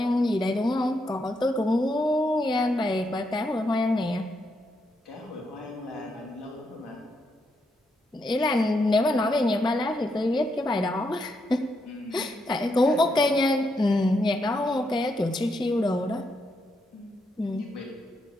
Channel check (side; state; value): both; normal; correlation 0.80